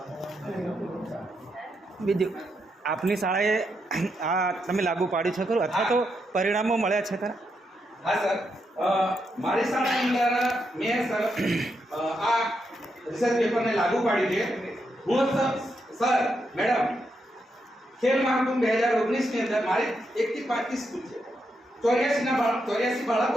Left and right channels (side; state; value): both; normal; correlation 0.82